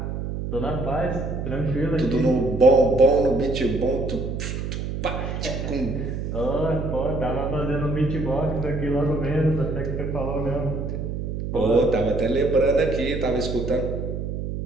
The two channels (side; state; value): right; noise; hum, 4 dB below the sound